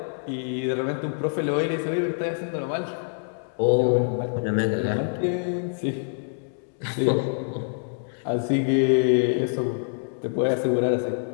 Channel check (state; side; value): silent; right; 61 dB below the other